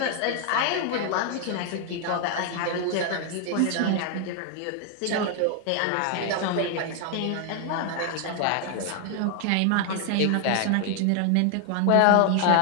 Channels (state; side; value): different; both; correlation 0.00